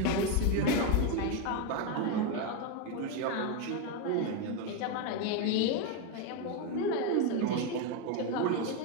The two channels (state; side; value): different; both; correlation 0.02